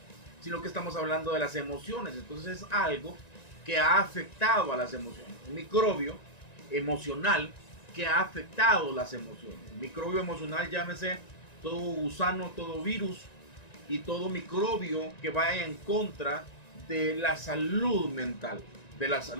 sino que estamos hablando de las emociones. Entonces es algo que ha afectado a las emociones, un microbio emocional que ha afectado las emociones. El microbio emocional, llámese todo gusano, todo virus y todo microbio que vaya en contra de la salud mental, de la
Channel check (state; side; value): late; right; 1.9 ms